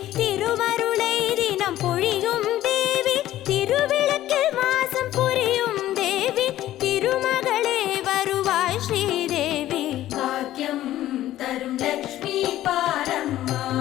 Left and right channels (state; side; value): quieter; right; 13.9 dB